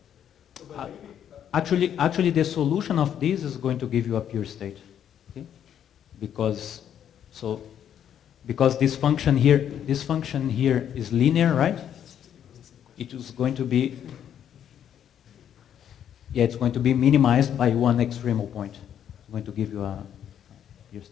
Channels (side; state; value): right; quieter; 9.5 dB